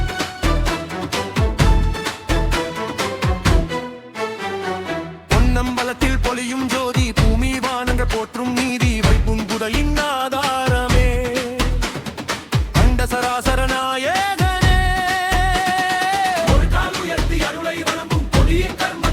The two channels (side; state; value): both; identical; correlation 1.00